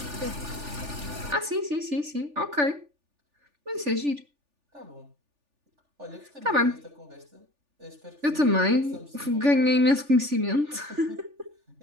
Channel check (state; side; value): late; left; 3.4 ms